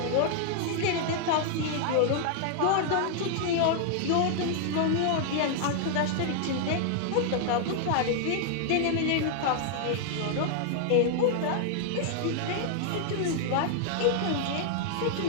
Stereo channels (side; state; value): both; different; correlation -0.01